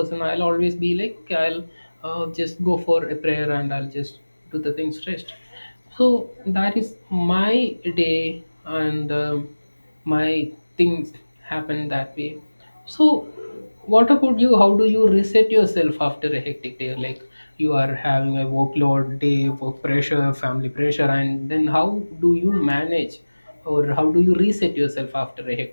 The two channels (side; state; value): both; inverted; correlation -1.00